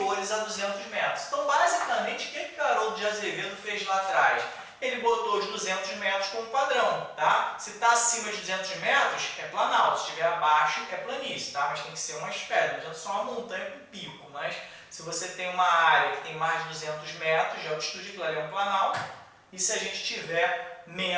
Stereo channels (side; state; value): both; identical; correlation 1.00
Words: a 200 metros. Então, basicamente, o que Haroldo de Azevedo fez lá atrás? Ele botou os 200 metros como padrão, tá? Se está acima de 200 metros, é planalto. Se estiver abaixo, é planície, tá? Mas tem que ser umas pedras, não adianta só uma montanha com pico. Mas se você tem uma área que tem mais de 200 metros de altitude, aquilo ali é um planalto. E se a gente tiver